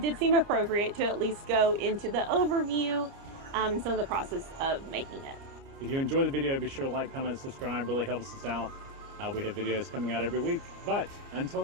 did seem appropriate to at least go into the overview and some of the process of making it. If you enjoy the video, be sure to like, comment, subscribe. Really helps us out. We have videos coming out every week. But until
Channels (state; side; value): late; left; 30 ms